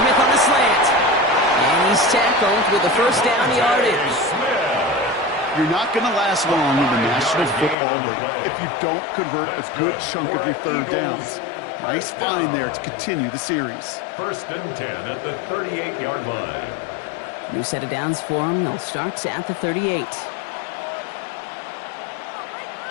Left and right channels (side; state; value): right; drops out; at 7.8 s